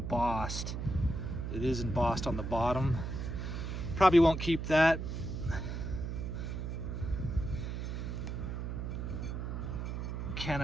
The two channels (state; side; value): noise; right; hum, 4 dB below the sound